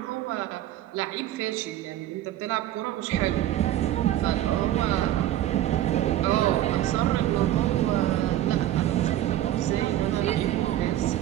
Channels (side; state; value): left; quieter; 13.1 dB